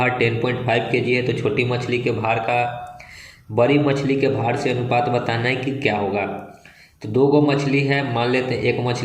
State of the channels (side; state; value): both; identical; correlation 1.00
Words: 10.5 kg है तो छोटी मछली के भार का बड़ी मछली के भार से अनुपात बताना है कि क्या होगा। तो 2 गो मछली है, मान लेते हैं एक